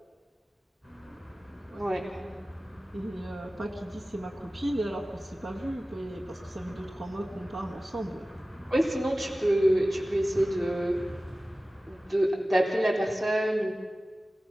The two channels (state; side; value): normal; both; correlation 0.97